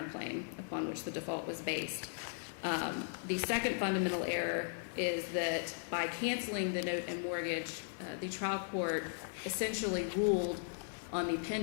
upon which the default was based. The second fundamental error is that by canceling the note and mortgage, the trial court essentially ruled on the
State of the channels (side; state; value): right; silent; digital silence